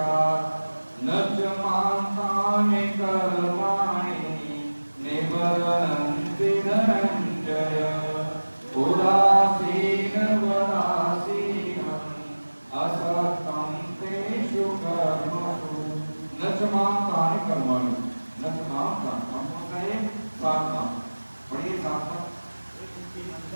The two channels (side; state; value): both; inverted; correlation -1.00